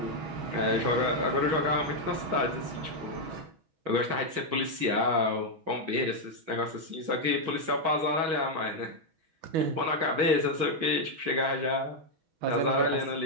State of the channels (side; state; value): left; late; 6.2 ms